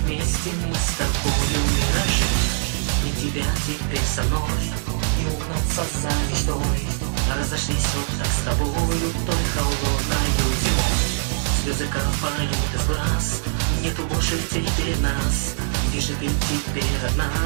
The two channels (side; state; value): left; silent; digital silence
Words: мы с тобою миражи. Нет тебя теперь со мной, не угнаться за мечтой. Разошлись вот так с тобою той холодною зимой. Слезы капают из глаз, нету больше теперь нас. Где же ты теперь,